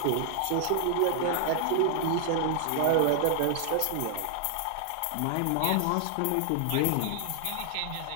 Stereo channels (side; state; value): both; different; correlation 0.00